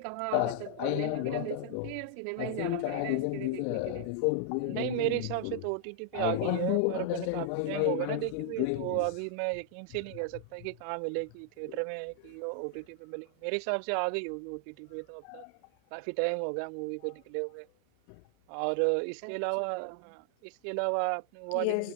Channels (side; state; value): both; different; correlation -0.01